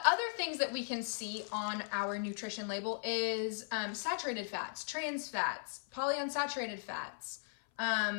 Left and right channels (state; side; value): silent; right; 53 dB below the other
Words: other things that we can see on our nutrition label is saturated fats, trans fats, polyunsaturated fats.